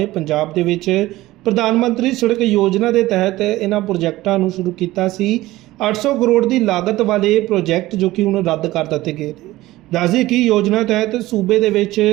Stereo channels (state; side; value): quieter; left; 17.3 dB